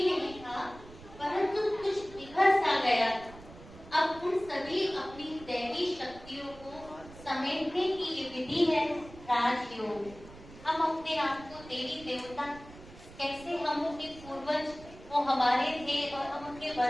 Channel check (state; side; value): noise; right; rumble, 18 dB below the sound